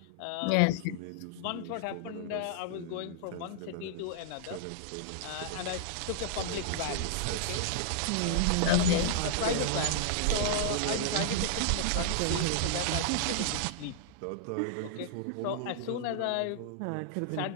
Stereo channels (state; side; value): different; both; correlation -0.01